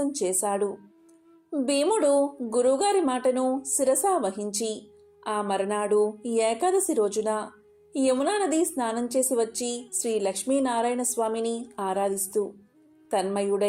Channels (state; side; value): identical; both; correlation 1.00